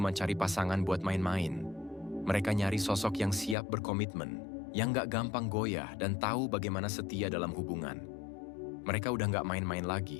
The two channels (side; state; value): right; drops out; at 3.6 s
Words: cari pasangan buat main-main. Mereka nyari sosok yang siap berkomitmen, yang gak gampang goyah dan tahu bagaimana setia dalam hubungan. Mereka udah gak main-main